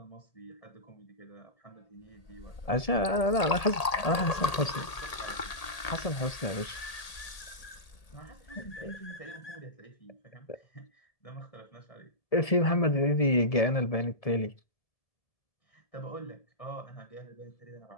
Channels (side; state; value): right; late; 1.8 ms